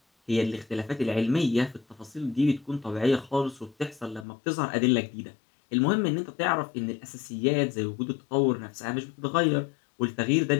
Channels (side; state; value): right; drops out; at 4.2 s